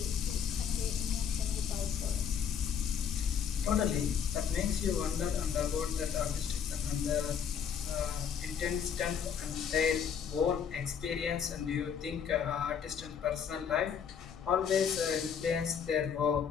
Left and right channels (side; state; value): right; quieter; 7.5 dB